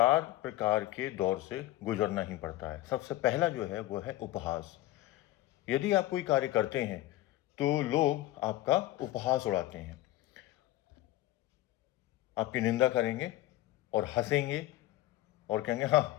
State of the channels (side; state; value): right; quieter; 16.1 dB